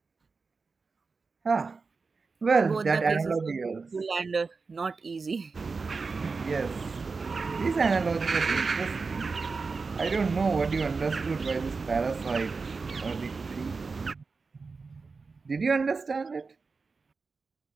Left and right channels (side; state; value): left; quieter; 4.5 dB